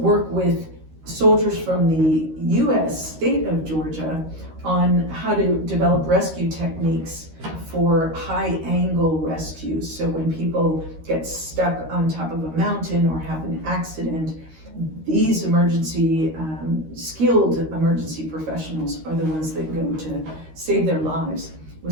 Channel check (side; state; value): left; late; 13 ms